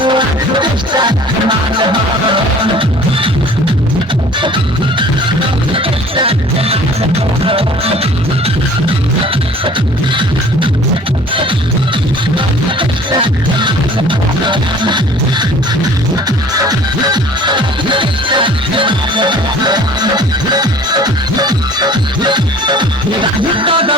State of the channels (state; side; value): normal; both; correlation 0.48